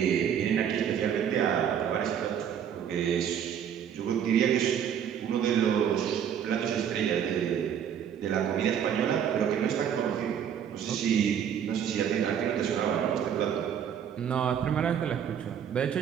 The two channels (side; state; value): left; quieter; 8.7 dB